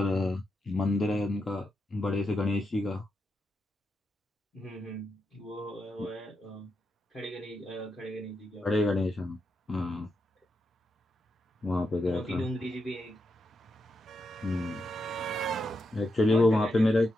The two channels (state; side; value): normal; both; correlation 0.85